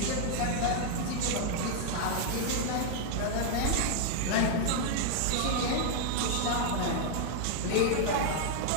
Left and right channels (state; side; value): different; both; correlation 0.00